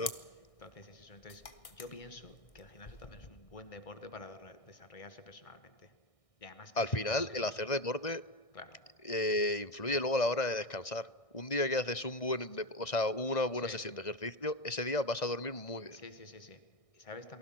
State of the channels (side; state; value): right; late; 1.6 ms